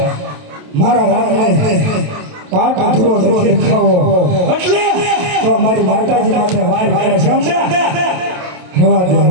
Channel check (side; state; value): left; late; 27 ms